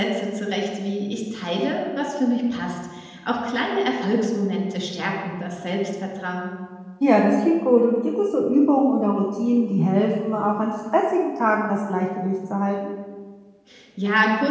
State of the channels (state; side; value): identical; both; correlation 1.00